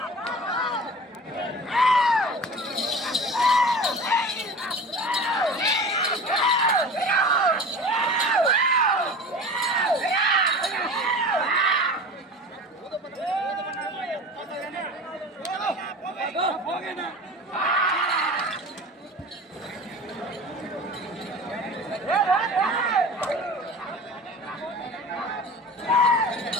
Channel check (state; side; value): normal; both; correlation 0.36